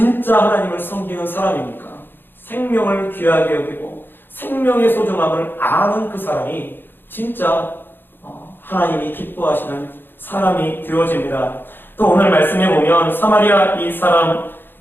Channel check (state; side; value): late; right; 0.099 ms